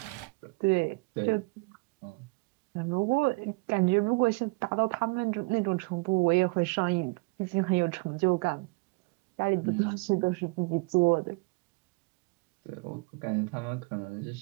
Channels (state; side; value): quieter; left; 29.4 dB